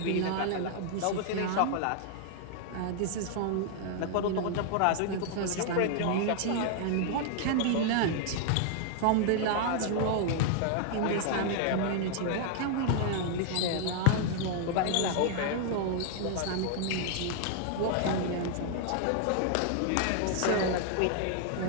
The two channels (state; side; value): different; both; correlation 0.00